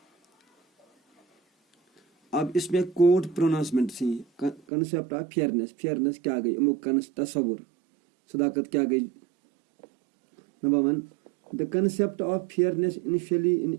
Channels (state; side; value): drops out; left; at 4.6 s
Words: अब इसमें कोड प्रोनाउंसमेंट थी कंसेप्ट ऑफ फेयरनेस। फेयरनेस क्या गई, अमुक तस्वुर सदाकत क्या गई। Number 1, the concept of fairness initially in